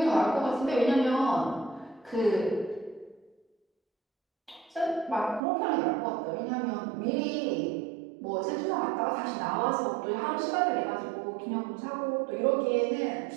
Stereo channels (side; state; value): left; drops out; at 5.4 s